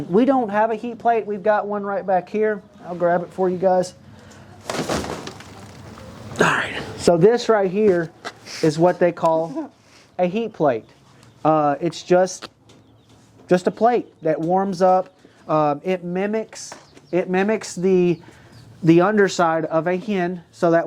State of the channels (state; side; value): identical; both; correlation 1.00